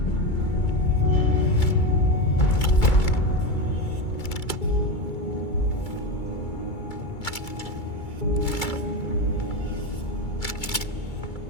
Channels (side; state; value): right; late; 2.3 ms